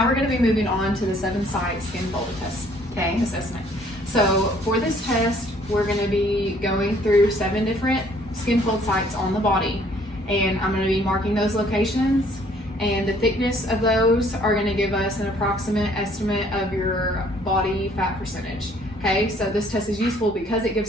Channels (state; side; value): normal; both; correlation 0.61